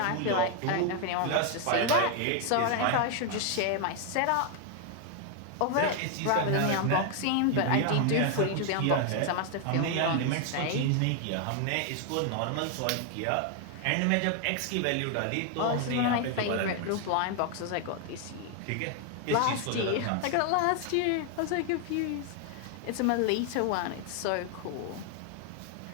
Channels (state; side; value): different; both; correlation 0.00